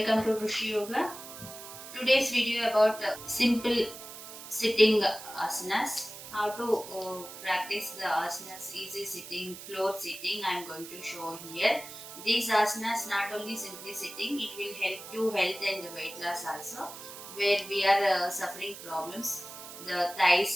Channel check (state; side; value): noise; right; hiss, 13 dB below the sound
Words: to Rushi Yoga. Today's video about simple sitting asanas. How to practice the asanas, easy sitting, floor sitting. I'm going to show here. These asanas not only simply sitting, it will help to health and weight loss also. Where we are suffering problems, the